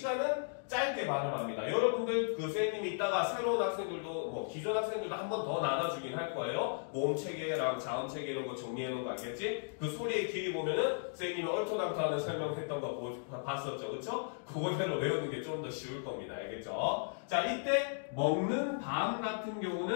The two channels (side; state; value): right; silent; digital silence